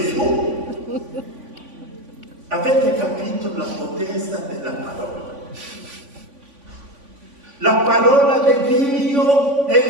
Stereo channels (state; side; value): late; left; 3.5 ms